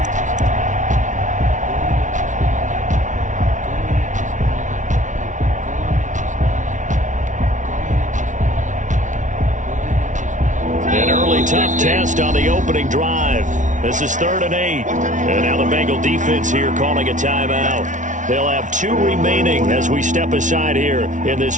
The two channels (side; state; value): left; late; 0.37 ms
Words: An early tough test on the opening drive. This is 3rd and 8. And now the Bengal defense here calling a timeout. They'll have 2 remaining as we step aside here in this